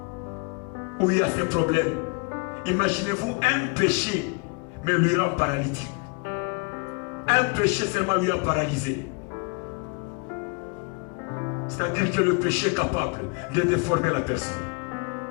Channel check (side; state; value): right; quieter; 32.9 dB